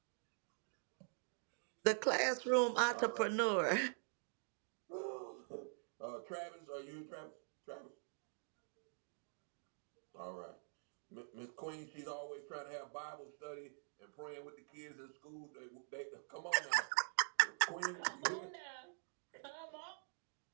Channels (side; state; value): left; silent; digital silence